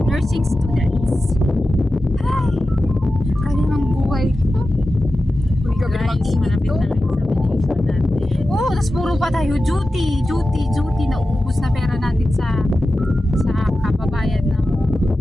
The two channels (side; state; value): both; normal; correlation 0.93